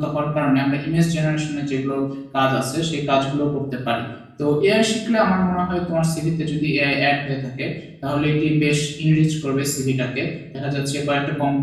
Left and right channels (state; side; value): identical; both; correlation 1.00